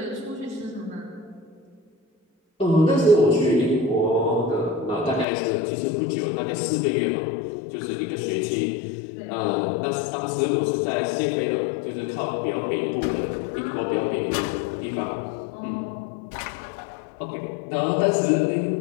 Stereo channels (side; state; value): right; drops out; at 5.2 s